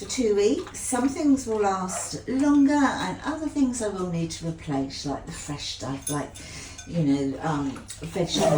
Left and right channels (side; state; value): both; identical; correlation 1.00